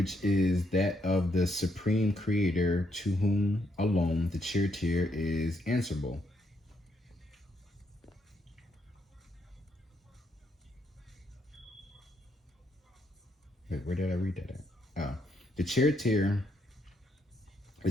is that of the supreme creator to whom alone the charioteer is answerable. Wait, where did I read that at? Oh, the charioteer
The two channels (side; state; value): both; normal; correlation 0.76